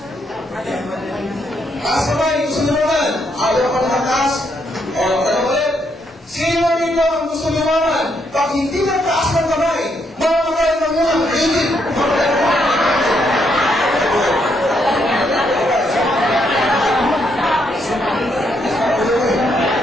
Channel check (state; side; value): normal; both; correlation 0.76